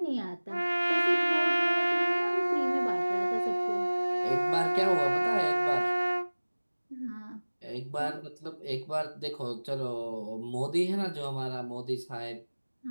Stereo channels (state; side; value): inverted; both; correlation -1.00